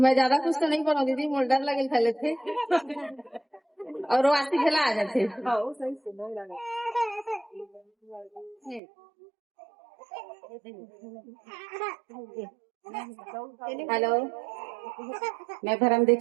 ज्यादा कुछ तो नहीं बोलूँ दीदी, मोर डर लगे खेले थे और वो आती खेला आ जाते। हेलो, मैं धर्मदेव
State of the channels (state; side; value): drops out; left; at 8.8 s